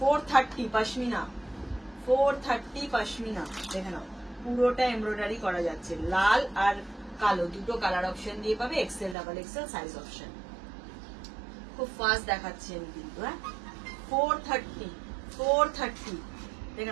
পশমিনা, 430 পশমিনা, দেখে নাও পুরোটা এমব্রয়ডারি করা যাচ্ছে, লাল আর কালো দুটো কালার অপশন দিয়ে পাবে, Excel double XL size option. খুব ফাস্ট দেখাচ্ছি আমি কিন্তু, হ্যাঁ 430 দেখে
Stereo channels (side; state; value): left; drops out; at 9.2 s